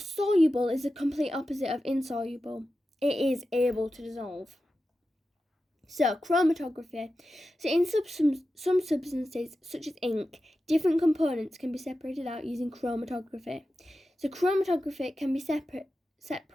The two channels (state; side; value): normal; both; correlation 0.92